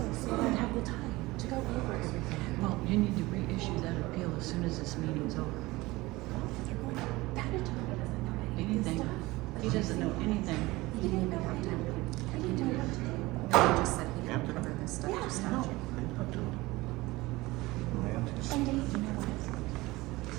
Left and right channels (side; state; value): left; quieter; 20.5 dB